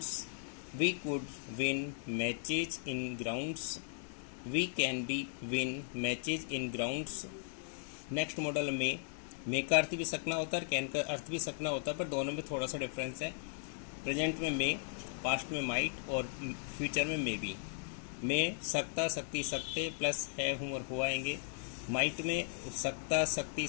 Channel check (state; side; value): silent; right; digital silence